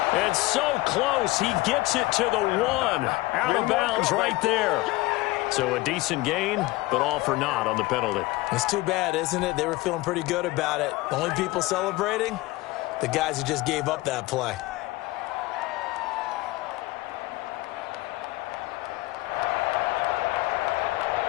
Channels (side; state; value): right; quieter; 20.2 dB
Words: And so close, he gets it to the 1. Out of bounds right there. So a decent gain, but all for naught on the penalty. It's too bad, isn't it? They were feeling pretty good about it. The only people celebrating, the guys who just gave up that play.